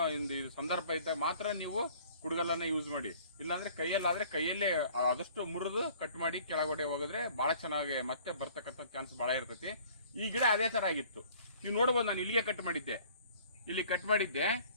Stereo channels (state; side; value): inverted; both; correlation -0.53